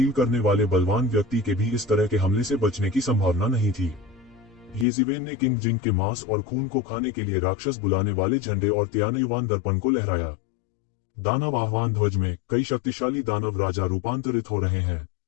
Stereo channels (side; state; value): right; drops out; at 4.9 s